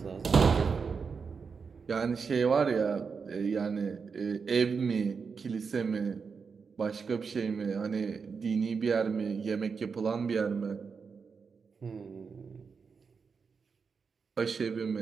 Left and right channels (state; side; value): quieter; left; 5.5 dB